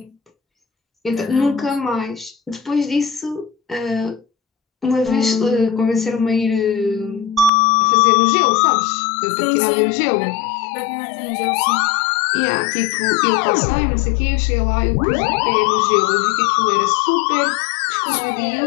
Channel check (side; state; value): right; drops out; at 7.5 s